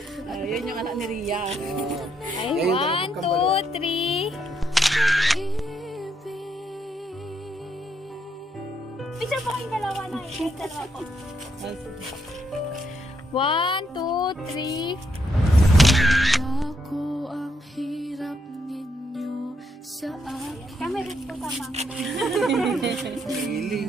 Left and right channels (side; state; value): both; normal; correlation 0.76